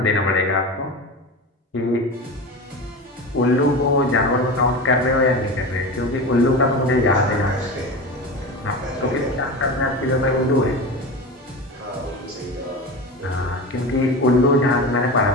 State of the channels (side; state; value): both; normal; correlation 0.27